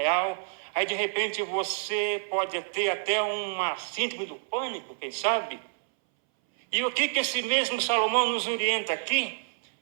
Aí, de repente, você pode ter até uma síndrome do pânico, quem sabe? E o que esse mesmo Salomão nos orienta aqui?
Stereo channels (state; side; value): silent; left; 59 dB below the other